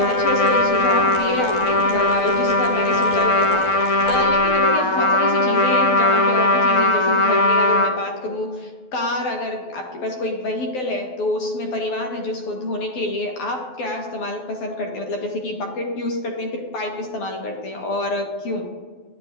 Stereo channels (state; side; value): late; right; 12 ms